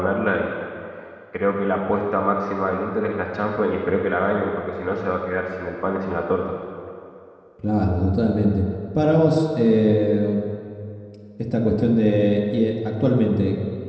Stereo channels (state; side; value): identical; both; correlation 1.00